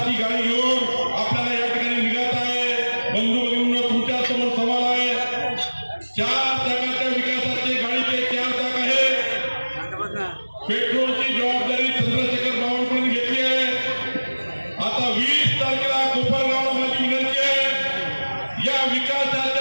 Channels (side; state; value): both; inverted; correlation -1.00